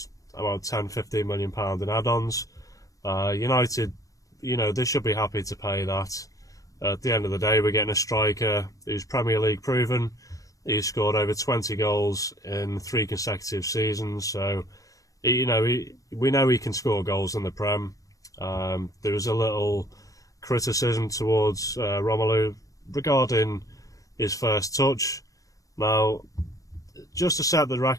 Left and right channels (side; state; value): right; late; 0.16 ms